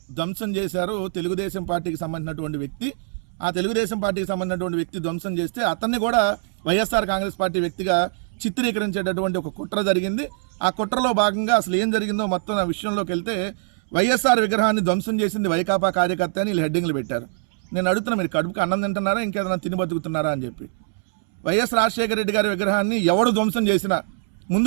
ధ్వంసం చేశారు తెలుగుదేశం పార్టీకి సంబంధించినటువంటి వ్యక్తి. ఆ తెలుగుదేశం పార్టీకి సంబంధించినటువంటి వ్యక్తి ధ్వంసం చేస్తే అతన్ని కూడా వైఎస్ఆర్ కాంగ్రెస్ పార్టీ వ్యక్తిగా చిత్రీకరించేటటువంటి ఒక కుట్ర జరిగింది. ఆ కుట్రలో భాగంగా అసలు ఏం జరిగిందో మొత్తం ఆ విషయంలోకి వెళ్తే వైఎస్ఆర్ విగ్రహాన్ని ధ్వంసం చేసింది వైకాపా కార్యకర్త అని వీళ్ళు హెడ్డింగ్లు పెట్టారు. నేను అడుగుతున్నా, మీరు కడుపుకి అన్నం తింటున్నారా ఇంకేదైనా తిని బతుకుతున్నారా అని చెప్పి. వైఎస్ రాజశేఖర రెడ్డి గారి విగ్రహాన్ని ఎవడు ధ్వంసం చేసినా ముందు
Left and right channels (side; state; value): left; silent; 63 dB below the other